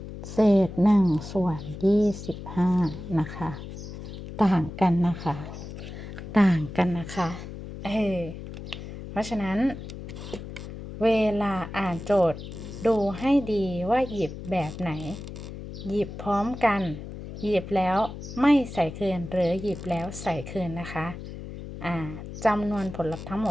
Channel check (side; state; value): left; noise; hum, 10 dB below the sound